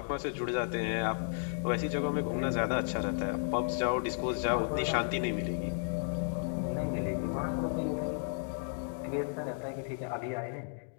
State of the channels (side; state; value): right; silent; digital silence